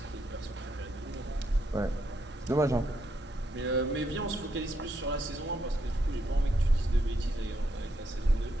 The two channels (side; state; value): both; normal; correlation 0.78